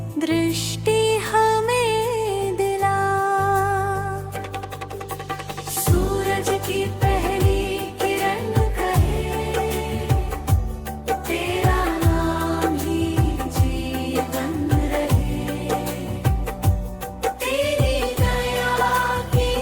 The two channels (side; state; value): both; identical; correlation 1.00